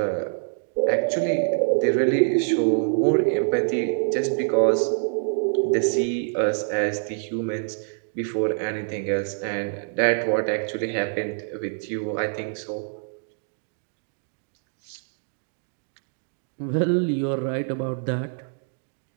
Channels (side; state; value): left; silent; digital silence